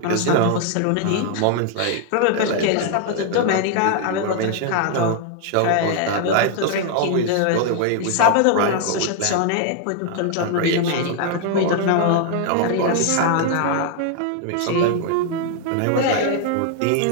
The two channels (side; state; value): both; different; correlation 0.00